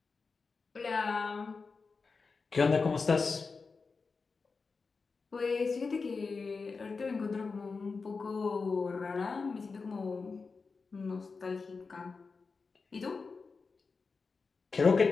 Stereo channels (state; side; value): quieter; right; 4.5 dB